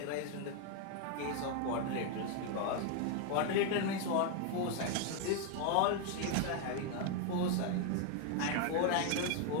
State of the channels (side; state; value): both; different; correlation 0.01